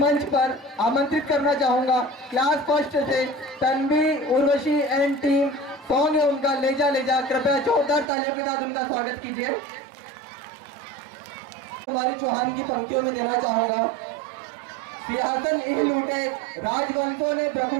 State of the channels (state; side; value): drops out; left; at 8.1 s